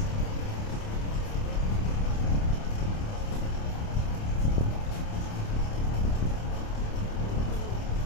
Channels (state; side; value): late; right; 28 ms